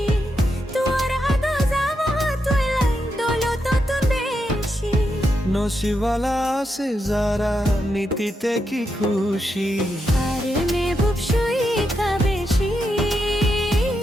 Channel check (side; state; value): both; normal; correlation 0.84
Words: तुअर आदो जावा तोलाई दोलो तो तुम बेशी नसीबाला से जारा नीतिते की खुशी আর महबूब শুই কা বেশি